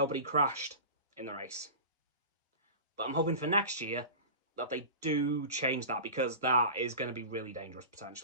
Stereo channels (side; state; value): both; inverted; correlation -0.33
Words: crashed in the race. But I'm hoping for next year that they do change that, because that is going to be really dangerous,